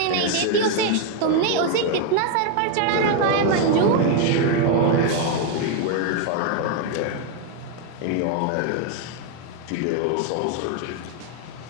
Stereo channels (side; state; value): both; different; correlation 0.01